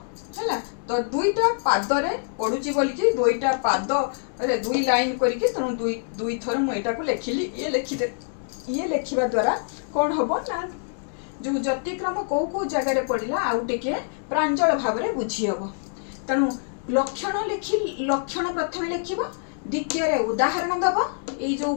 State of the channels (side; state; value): right; silent; 62 dB below the other